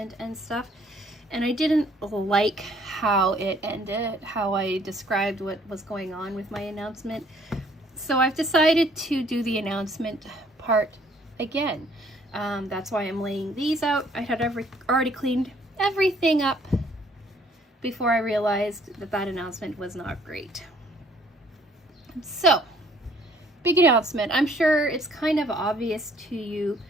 and stuff, and I didn't like how it ended, how I described what was going on with my announcement. So I've decided to do the announcement part again. That's why I'm laying these out. I had already cleaned everything up before I realized that that announcement was not great. So, big announcement. I'm sure it's kind of obvious to you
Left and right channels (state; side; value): normal; both; correlation 0.61